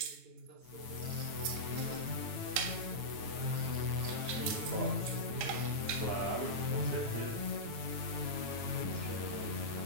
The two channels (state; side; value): late; left; 9.1 ms